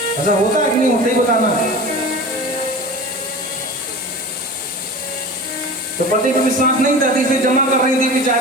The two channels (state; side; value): normal; both; correlation 0.34